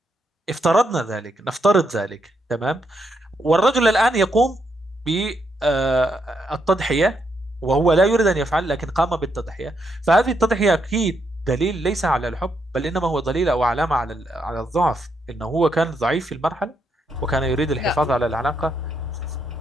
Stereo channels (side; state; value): both; normal; correlation 0.78